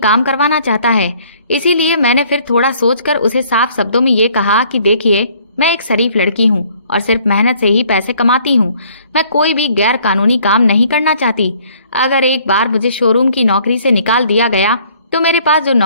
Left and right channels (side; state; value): both; inverted; correlation -0.60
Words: करवाना चाहता है। इसीलिए मैंने फिर थोड़ा सोचकर उसे साफ शब्दों में ये कहा कि देखिए, मैं एक शरीफ लड़की हूँ और सिर्फ मेहनत से ही पैसे कमाती हूँ। मैं कोई भी गैर कानूनी काम नहीं करना चाहती। अगर एक बार मुझे शोरूम की नौकरी से निकाल दिया गया तो मेरे पास जो